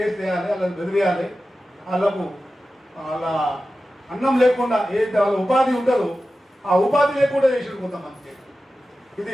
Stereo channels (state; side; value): normal; both; correlation 0.94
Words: వేయాలి, వాళ్ళని బెదిరేయాలి, వాళ్ళ అన్నం లేకుండా ఏదైతే వాళ్ళ ఉపాధి ఉంటుందో ఆ ఉపాధి లేకుండా చేసిండు కొంతమందికి. ఇది